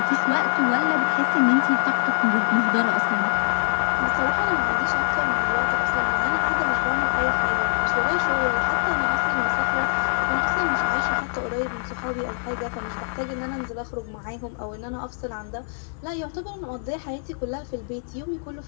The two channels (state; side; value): silent; right; digital silence